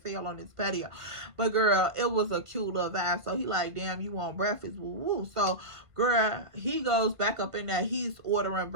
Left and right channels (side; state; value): left; late; 1.5 ms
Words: hell on this patio. But girl, it was a cute little vibe. So he like, damn, you want breakfast? Woo woo. So girl, he goes back up in there. He's ordering